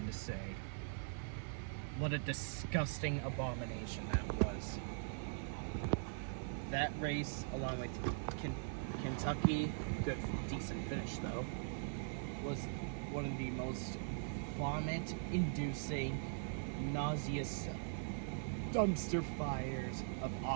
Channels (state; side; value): silent; left; digital silence